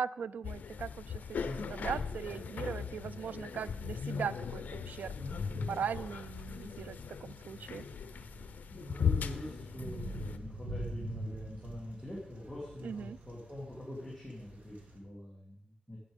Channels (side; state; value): both; normal; correlation 0.73